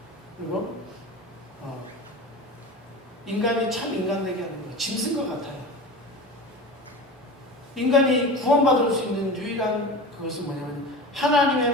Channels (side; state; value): both; normal; correlation 0.31